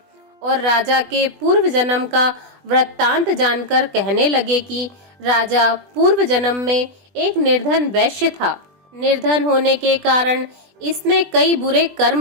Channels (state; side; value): late; left; 20 ms